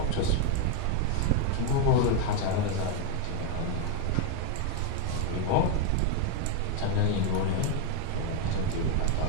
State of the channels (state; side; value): different; both; correlation 0.01